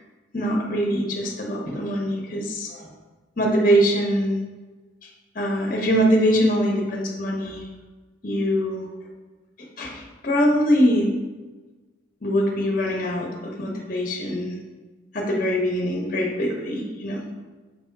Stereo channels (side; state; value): both; normal; correlation 0.68